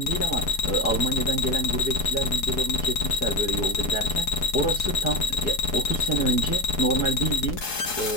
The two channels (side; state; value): right; late; 4.7 ms